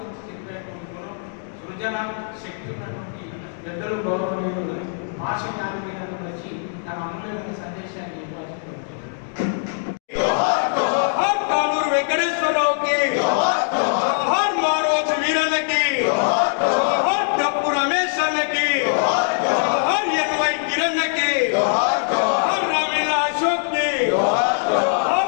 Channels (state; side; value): silent; right; digital silence